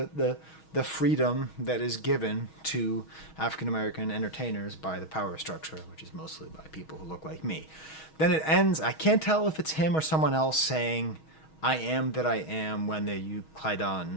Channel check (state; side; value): late; right; 6.3 ms